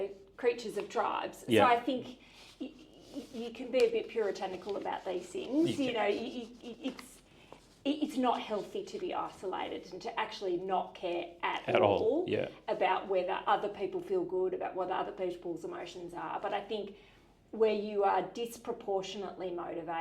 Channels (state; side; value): identical; both; correlation 1.00